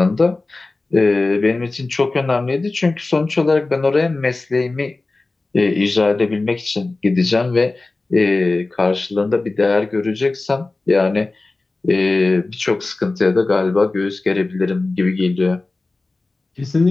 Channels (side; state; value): right; quieter; 3.3 dB